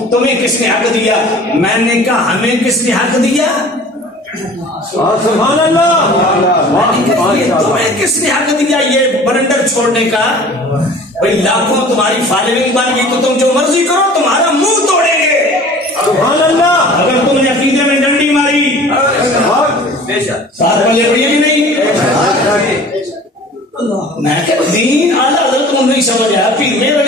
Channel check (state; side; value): normal; both; correlation 0.45